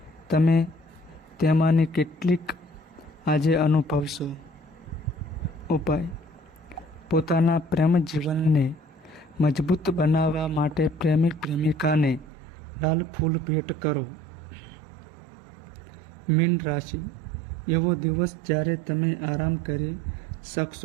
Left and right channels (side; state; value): left; drops out; at 12.2 s